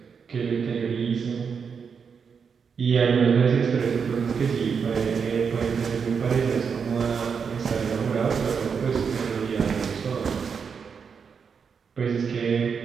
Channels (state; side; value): quieter; left; 6.2 dB